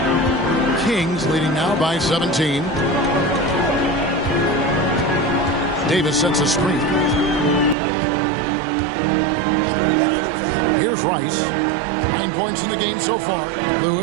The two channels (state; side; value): drops out; left; at 7.8 s